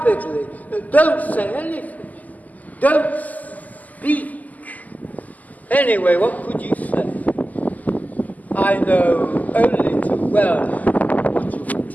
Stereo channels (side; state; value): right; late; 0.079 ms